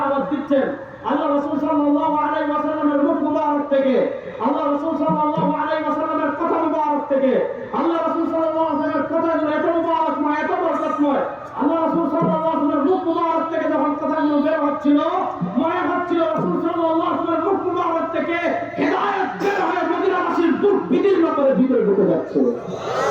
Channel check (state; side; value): identical; both; correlation 1.00